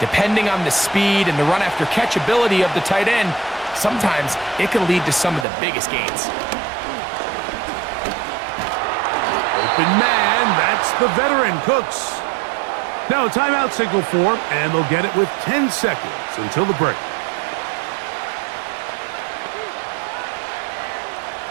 on the speed and the run after catch ability of the tight end, sometimes it can lead to some of the biggest gains. Open man, that's the veteran Cooks. Now a timeout signal for him, and they'll get it with 10 seconds until the break.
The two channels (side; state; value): left; drops out; at 5.5 s